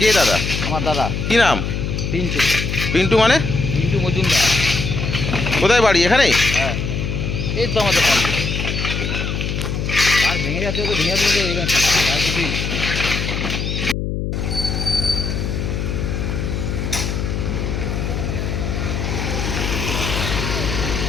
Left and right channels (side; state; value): left; noise; hum, 2 dB below the sound